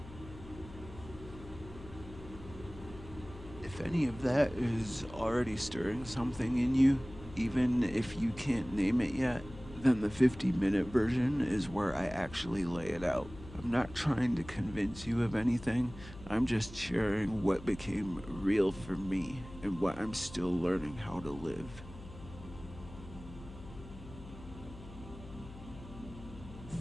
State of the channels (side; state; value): left; noise; hum, 16 dB below the sound